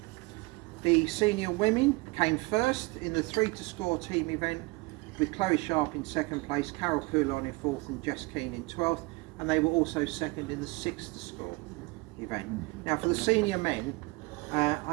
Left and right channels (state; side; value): quieter; left; 24.9 dB